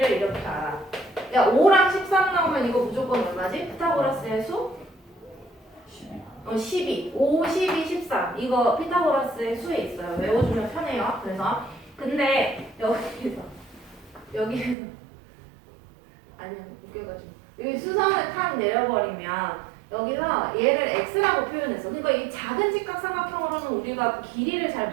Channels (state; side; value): drops out; left; at 14.8 s